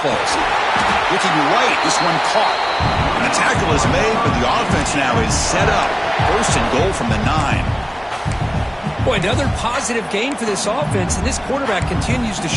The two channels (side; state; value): both; identical; correlation 1.00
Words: plays. Looking right, this one caught. And the tackle is made, but the offense now is set up. First and goal from the 9. Boy, another positive gain for this offense, and this quarterback continues to